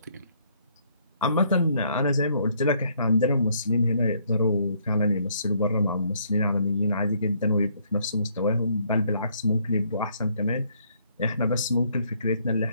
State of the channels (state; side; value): inverted; both; correlation -0.67